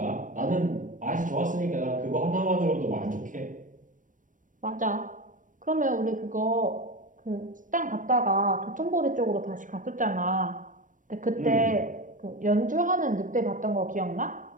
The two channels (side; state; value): left; late; 0.38 ms